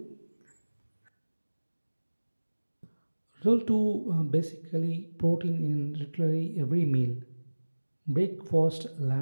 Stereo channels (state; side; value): inverted; both; correlation -1.00